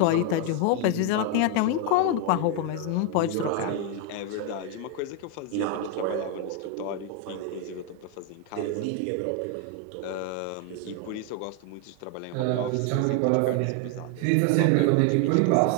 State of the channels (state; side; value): different; both; correlation 0.01